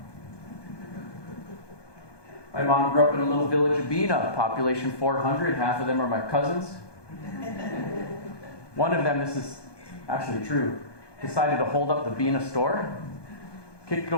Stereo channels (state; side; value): late; right; 1.2 ms